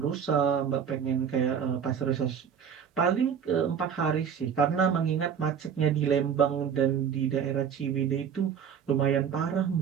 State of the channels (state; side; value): quieter; left; 7.7 dB